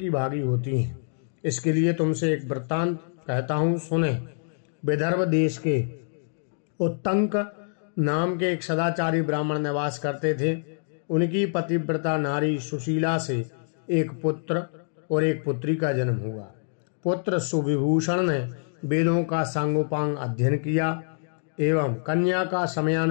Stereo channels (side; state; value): right; silent; digital silence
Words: भागी होती हैं। इसके लिए तुमसे एक वृत्तांत कहता हूँ, सुने। विदर्भ देश के उत्तंक नाम के एक सदाचारी ब्राह्मण निवास करते थे। उनकी पतिव्रता नारी सुशीला से एक पुत्र और एक पुत्री का जन्म हुआ। पुत्र सुविभूषण ने वेदों का सांगोपांग अध्ययन किया एवं कन्या का